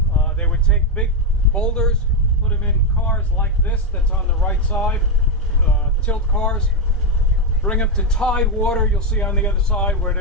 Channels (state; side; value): normal; both; correlation 0.06